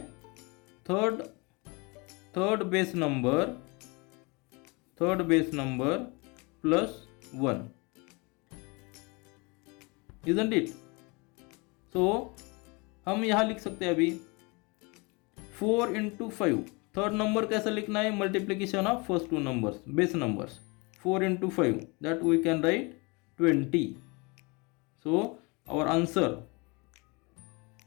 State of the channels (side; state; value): right; quieter; 28.2 dB